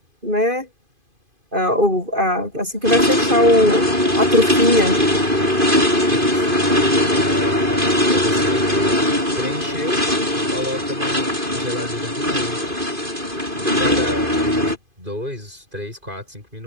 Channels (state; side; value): late; left; 2.5 ms